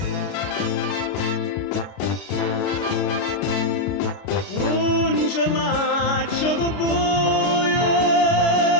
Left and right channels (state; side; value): late; right; 33 ms